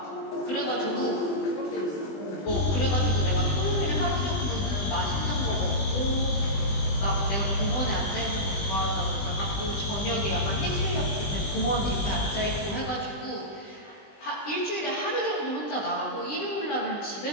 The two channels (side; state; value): right; late; 20 ms